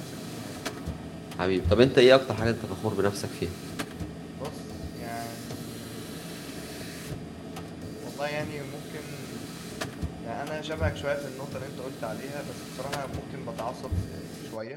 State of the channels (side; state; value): both; identical; correlation 1.00